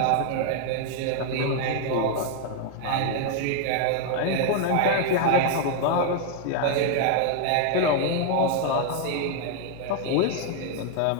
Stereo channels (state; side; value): different; both; correlation 0.00